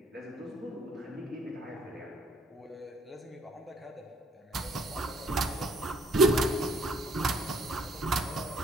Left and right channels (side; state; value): both; normal; correlation 0.63